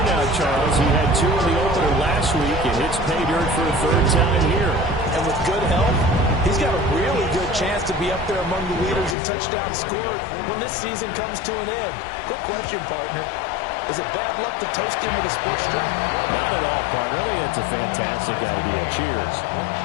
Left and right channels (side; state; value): right; drops out; at 9.2 s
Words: now, Charles. He had 2 in the opener last week, and hits pay dirt for a 3rd time here. And with good health, he's got a really good chance to be up there among the leaders in touchdowns scored when this season comes to an end. Quick question, partner. Is it bad luck to toast him with a sports drink? Not at all, partner. I think that's a fantastic idea. Cheers.